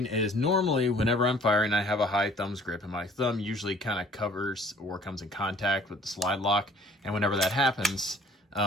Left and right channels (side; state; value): both; normal; correlation 0.54